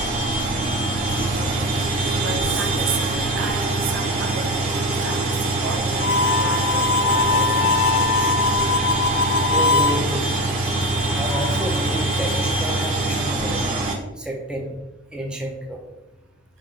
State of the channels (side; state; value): both; normal; correlation 0.22